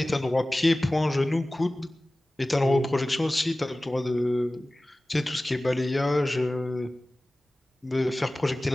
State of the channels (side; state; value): both; normal; correlation 0.97